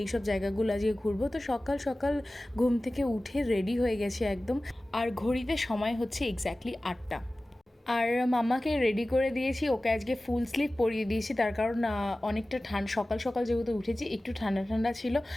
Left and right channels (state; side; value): normal; both; correlation 0.97